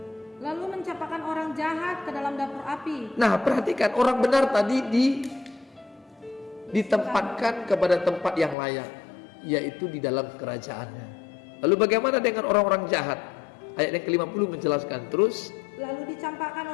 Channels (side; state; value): right; drops out; at 8.6 s